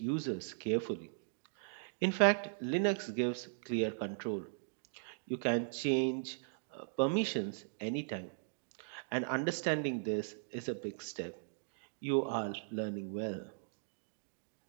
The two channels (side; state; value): left; silent; digital silence